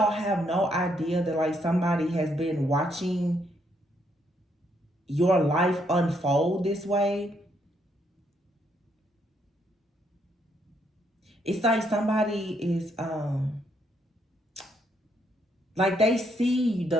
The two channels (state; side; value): normal; both; correlation 0.73